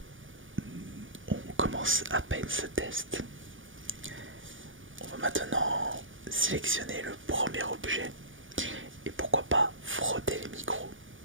on commence à peine ce test. On va maintenant sélectionner le premier objet et pourquoi pas frotter les micros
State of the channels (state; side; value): late; left; 0.57 ms